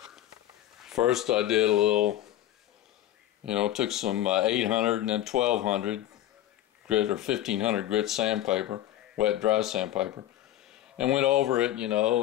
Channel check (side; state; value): right; quieter; 13.0 dB